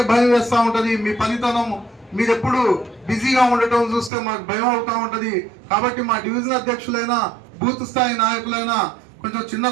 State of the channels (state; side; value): drops out; left; at 4.1 s